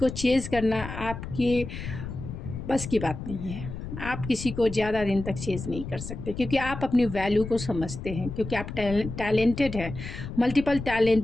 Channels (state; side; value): noise; left; rumble, 9 dB below the sound